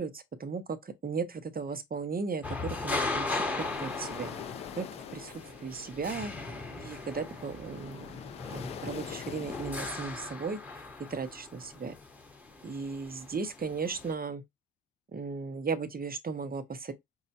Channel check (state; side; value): normal; both; correlation 0.40